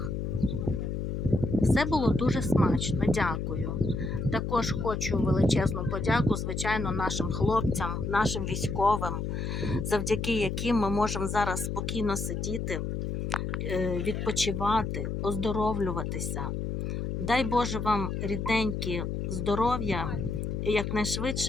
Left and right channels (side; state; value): left; noise; hum, 3 dB below the sound